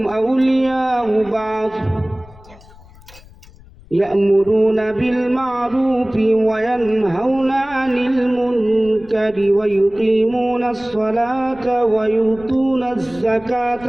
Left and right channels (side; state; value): left; noise; rumble, 23 dB below the sound